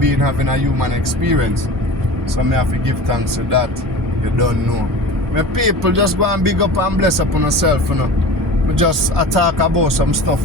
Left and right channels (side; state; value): both; normal; correlation 0.35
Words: having a human experience. So me have to give thanks to that. You don't know. My people, just go and big up and bless up on yourself, We just talk about some